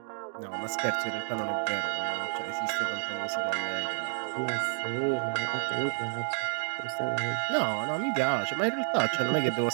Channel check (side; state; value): left; silent; 58 dB below the other